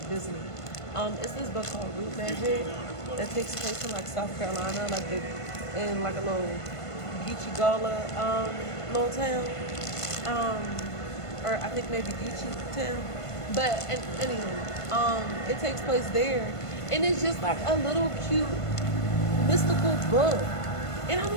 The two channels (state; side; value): late; right; 1.5 ms